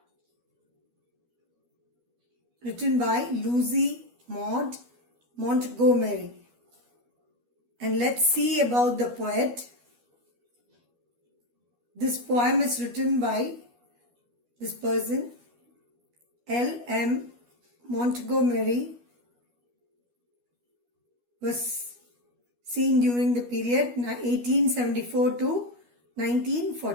Written by Lucy Maud Montgomery. And let's see about the poet. This poem is written by this person, L.M. Montgomery, was seen during the period 1874 to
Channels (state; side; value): late; left; 12 ms